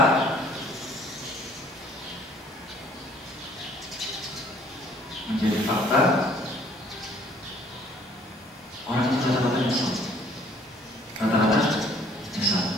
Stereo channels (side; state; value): both; normal; correlation 0.58